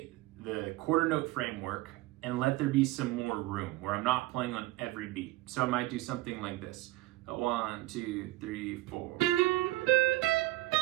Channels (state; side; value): quieter; left; 18.7 dB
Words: the quarter note framework and let there be some more room where I'm not playing on every beat. So I might do something like this. 1, 2, 3, 4.